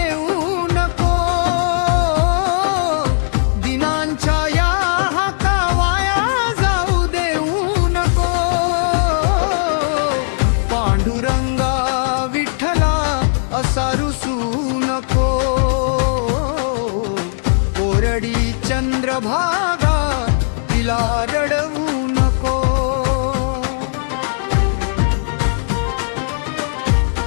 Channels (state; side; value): silent; right; digital silence